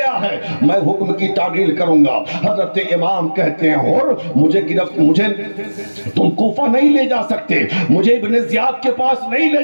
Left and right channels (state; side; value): inverted; both; correlation -1.00